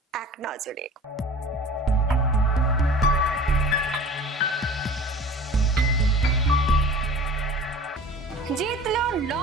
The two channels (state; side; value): normal; both; correlation 0.41